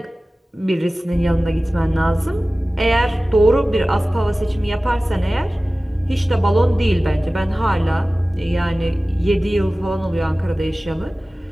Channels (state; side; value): normal; both; correlation 0.97